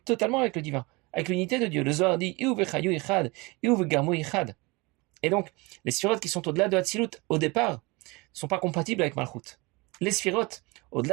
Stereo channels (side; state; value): left; quieter; 25.2 dB